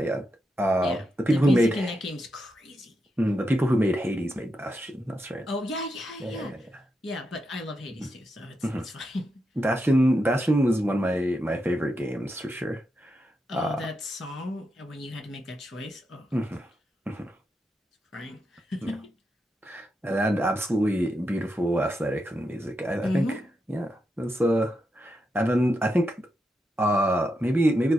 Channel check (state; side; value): normal; both; correlation 0.85